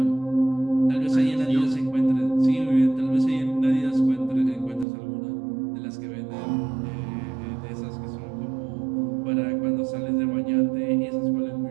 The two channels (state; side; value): drops out; left; at 4.9 s